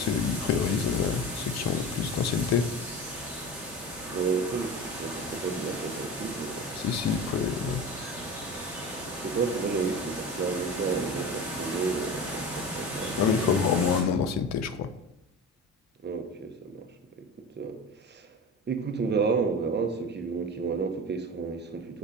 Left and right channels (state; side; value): normal; both; correlation 0.30